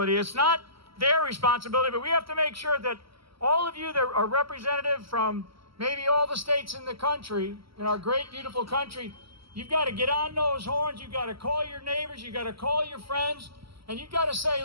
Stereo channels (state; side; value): late; left; 0.75 ms